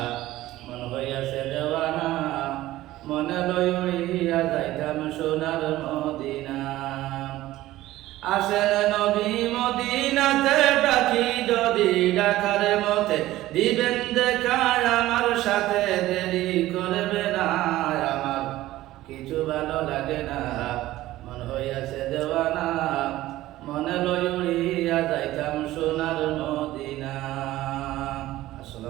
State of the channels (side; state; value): left; quieter; 15.9 dB